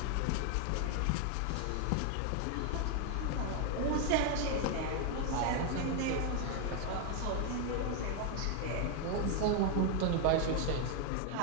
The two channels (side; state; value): both; different; correlation 0.01